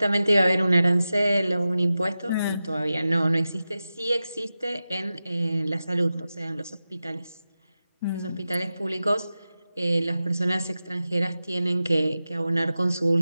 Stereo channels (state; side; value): inverted; both; correlation -0.93